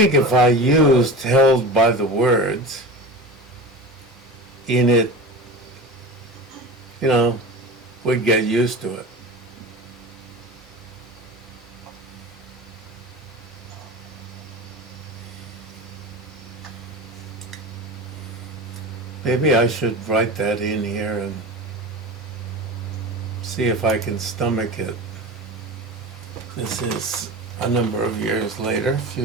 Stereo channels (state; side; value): normal; both; correlation 0.31